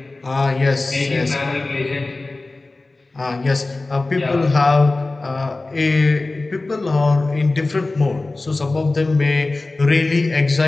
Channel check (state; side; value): quieter; right; 3.2 dB